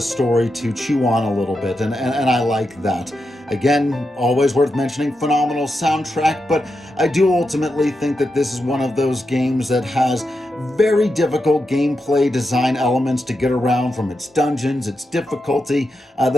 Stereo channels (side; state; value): both; normal; correlation 0.87